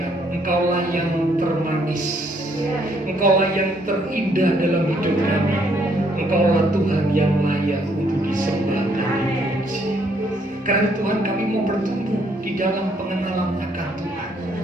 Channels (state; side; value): normal; both; correlation 0.68